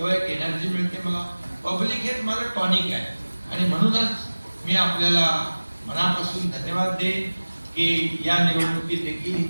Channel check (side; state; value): both; inverted; correlation -1.00